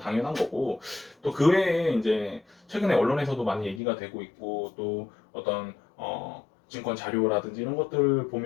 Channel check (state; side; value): drops out; right; at 3.8 s